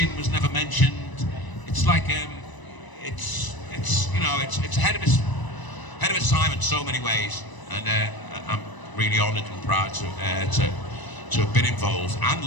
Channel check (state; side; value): late; right; 1.0 ms